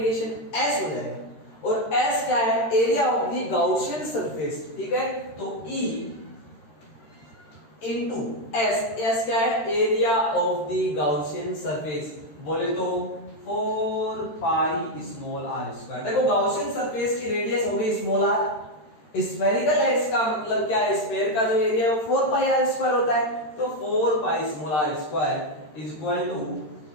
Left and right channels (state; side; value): late; right; 13 ms